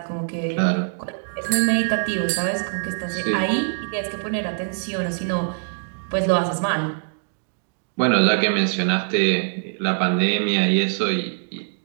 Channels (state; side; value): silent; left; digital silence